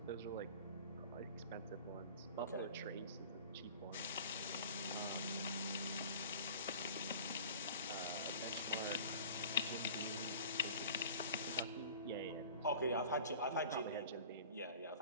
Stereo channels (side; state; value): both; inverted; correlation -0.43